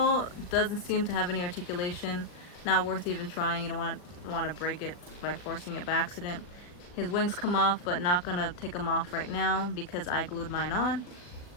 doesn't seem to have any articulation. Not worth even trying. You don't want to break it by forcing it by accident. His wings come off, but not gonna take them off right now because I glued mine on.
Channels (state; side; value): late; right; 39 ms